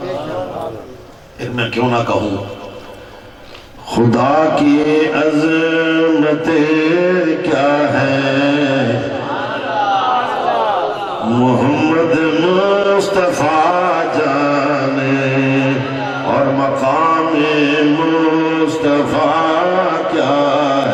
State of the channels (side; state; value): both; identical; correlation 1.00